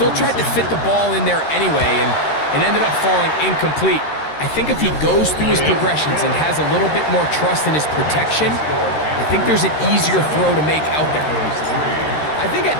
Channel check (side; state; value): right; late; 13 ms